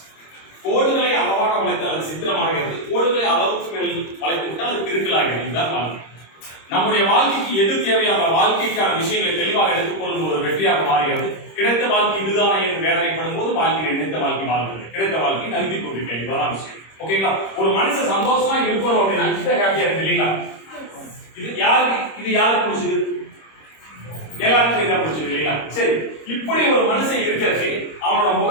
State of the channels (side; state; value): right; late; 26 ms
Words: கோடுகளை அளவாக வளைத்தால் அது சித்திரமாகிறது, கோடுகளை அளவுக்கு மேல் வளைத்து விட்டால் அது கிறுக்கலாகிறது. இதுதான் வாழ்க்கை. நம்முடைய வாழ்க்கைக்கு எது தேவையான வாழ்க்கைக்கான விஷயங்களை தெளிவாக எடுத்துக்கொள்ளும் ஒரு வெற்றியாக மாறுகிறது. கிடைத்த வாழ்க்கை இதுதானே என்று வேதனைப்படும் போது வாழ்க்கை நினைத்த வாழ்க்கை வாழ்கிறது, கிடைத்த வாழ்க்கை நகர்த்தி கொண்டிருக்கேன். இதுதான் விஷயம். ஓகேங்களா? ஒரு மனுஷன் சந்தோஷமா இருக்கணும் அப்படின்னா கிட்ட ஹாப்பியா இருக்கு இல்லைங்களா? இது யாருக்கு பிடிச்சது? எல்லாருக்கும் இதான் பிடிச்சது இல்லைங்களா? சரி, இப்படி ஒரு மனுஷன் இருக்கிறதுக்கு அவனோட